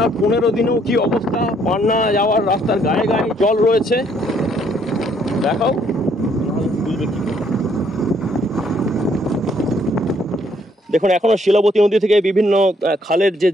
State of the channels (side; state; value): both; normal; correlation 0.67